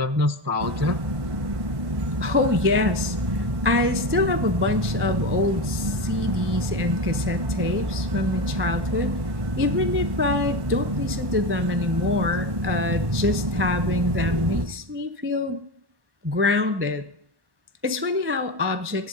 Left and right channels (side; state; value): left; late; 1.1 ms